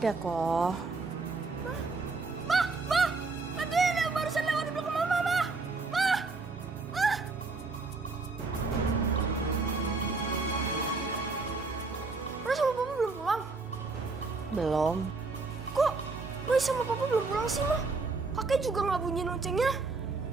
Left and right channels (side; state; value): left; quieter; 4.0 dB